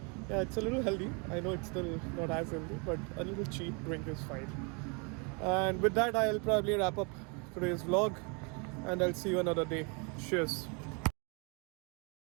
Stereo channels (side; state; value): left; quieter; 33.6 dB